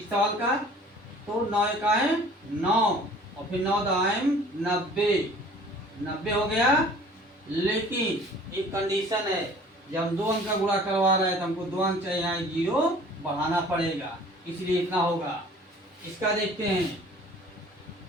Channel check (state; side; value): normal; both; correlation 0.50